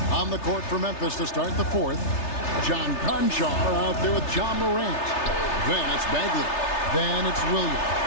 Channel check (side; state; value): right; late; 3.3 ms